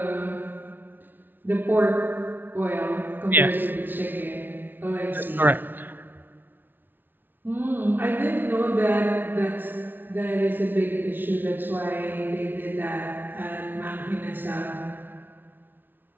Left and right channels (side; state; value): left; late; 0.093 ms